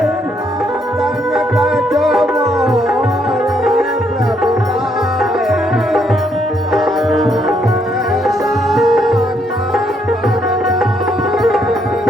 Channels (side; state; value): both; normal; correlation 0.73